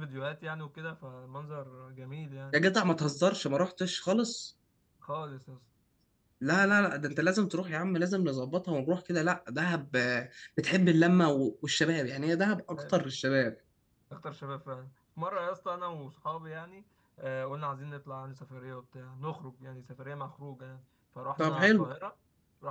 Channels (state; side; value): identical; both; correlation 1.00